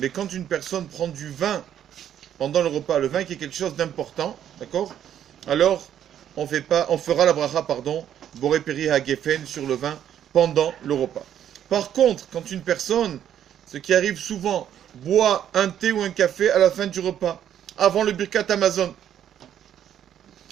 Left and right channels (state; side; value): quieter; left; 10.1 dB